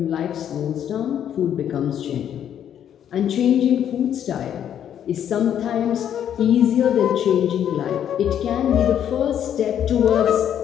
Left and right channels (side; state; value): right; quieter; 9.7 dB